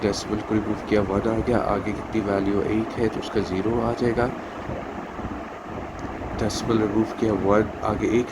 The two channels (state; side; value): identical; both; correlation 1.00